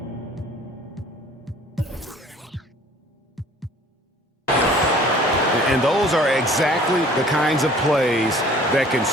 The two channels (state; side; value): normal; both; correlation 0.51